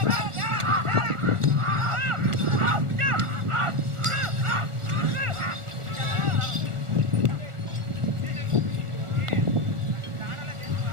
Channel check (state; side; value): late; left; 1.4 ms